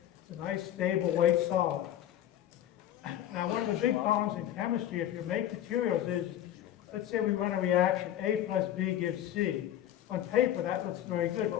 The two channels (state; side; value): quieter; right; 11.8 dB